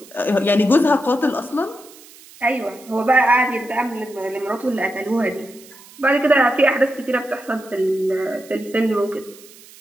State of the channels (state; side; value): noise; right; hiss, 22 dB below the sound